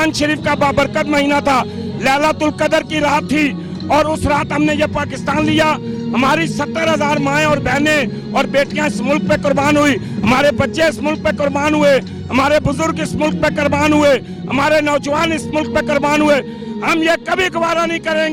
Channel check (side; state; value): both; identical; correlation 1.00